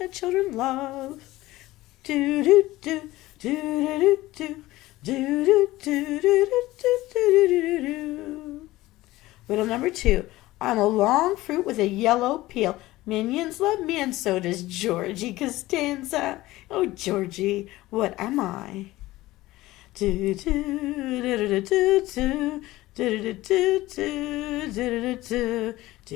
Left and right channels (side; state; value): right; quieter; 17.7 dB